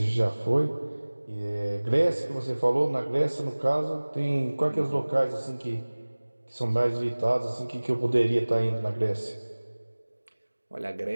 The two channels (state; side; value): inverted; both; correlation -1.00